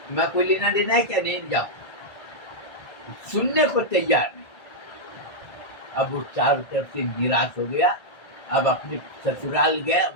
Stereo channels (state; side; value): late; right; 1.8 ms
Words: मैं कोई लेना देना है क्या, नहीं जाओ। सुनने को तैयार नहीं। अब वो चारों तरफ से निराश हो गया। अब अपने ससुराल गया,